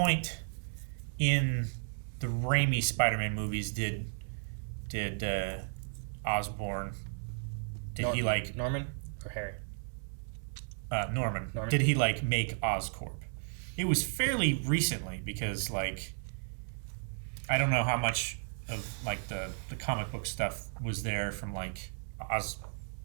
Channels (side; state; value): left; silent; 55 dB below the other